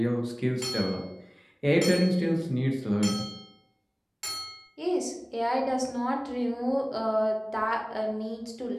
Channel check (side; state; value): both; identical; correlation 1.00